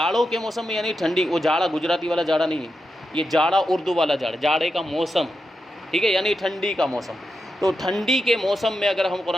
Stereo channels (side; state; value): both; normal; correlation 0.87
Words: کے موسم میں یعنی ٹھنڈی، وہ جاڑا گجراتی والا جاڑا نہیں ہے، یہ جاڑا اردو والا جاڑا، جاڑے کا موسم، ٹھیک ہے، یعنی ٹھنڈی کا موسم، تو ٹھنڈی کے موسم میں اگر ہم